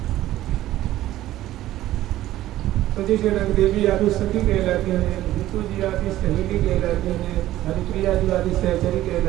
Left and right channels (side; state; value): left; quieter; 14.4 dB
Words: तो जैसे रंगदेवी आदि सखी कहलाती हैं, ऋतु जी आदि सहेली कहलाती हैं, हरिप्रिया जी आदि सहचरी